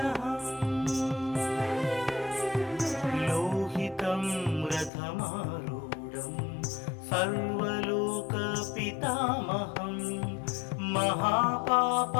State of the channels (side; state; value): right; drops out; at 4.9 s